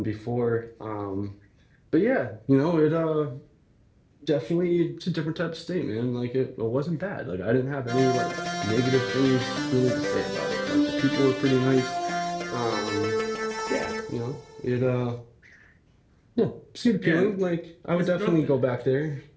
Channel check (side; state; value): both; identical; correlation 1.00